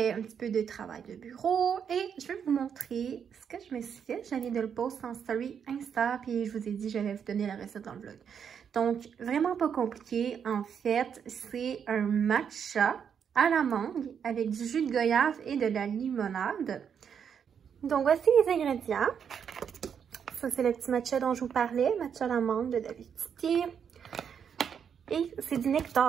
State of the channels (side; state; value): left; quieter; 7.6 dB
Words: un petit peu de travail de bureau et je vais vous montrer ce que je me suis fait. Je viens de le poster en story Insta, puis je vous ai dit que j'allais vous donner la recette dans le vlog. Donc, vraiment pas compliqué. En fait, c'est un matcha à la mangue avec du jus de goyave et de la limonade. Donc, voici les ingrédients. Ça, c'est le petit matcha dont je vous parlais, matcha à la mangue de David Titier. Et c'est du